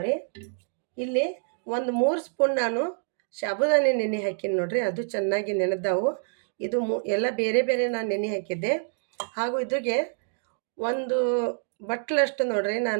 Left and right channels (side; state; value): left; silent; digital silence